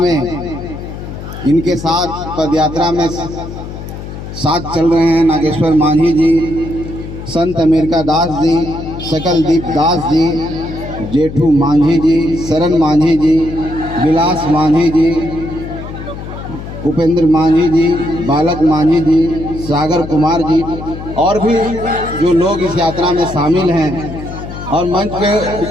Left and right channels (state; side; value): noise; left; hum, 10 dB below the sound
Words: इनके साथ पदयात्रा में साथ चल रहे हैं नागेश्वर मांझी जी, संत अमेरिका दास जी, सकलदीप दास जी, जेठू मांझी जी, शरण मांझी जी, विलास मांझी जी, उपेंद्र मांझी जी, बालक मांझी जी, सागर कुमार जी, और भी जो लोग इस यात्रा में शामिल हैं। और मंच पे